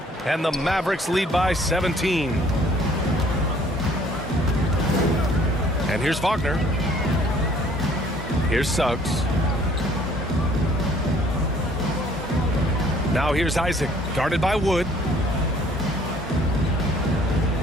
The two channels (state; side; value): normal; both; correlation 0.58